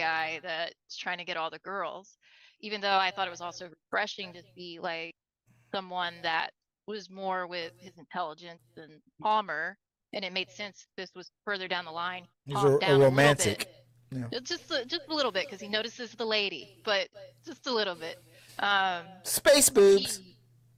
that's trying to get all the girls. Even though I thought it was also refreshing to see like someone that was more with his intelligence than Palmer, and it made sense this was further down the line. He's Calmed a down a little romantic. bit. Yeah. Just a little bit because he notices the lady, but just a little bit. Space boobs.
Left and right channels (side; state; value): both; identical; correlation 1.00